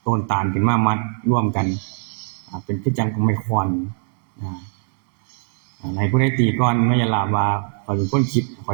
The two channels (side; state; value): left; silent; 65 dB below the other